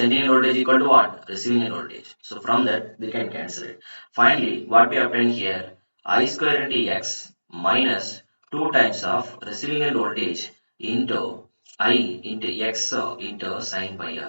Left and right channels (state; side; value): inverted; both; correlation -1.00